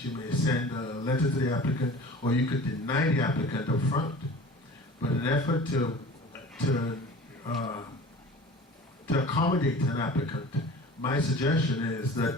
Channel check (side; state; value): both; normal; correlation 0.40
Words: you may send a letter to the applicant, or you could deny the applicant up front. But in an effort to accommodate an applicant, my suggestion is